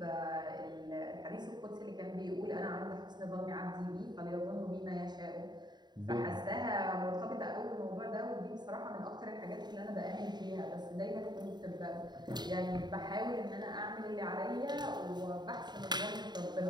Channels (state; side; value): late; left; 0.21 ms